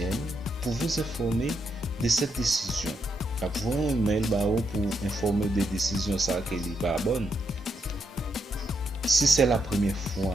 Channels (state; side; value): normal; both; correlation 0.80